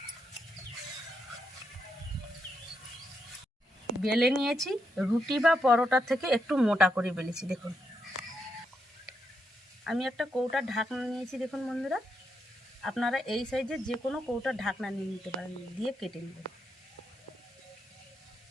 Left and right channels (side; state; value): both; normal; correlation 0.81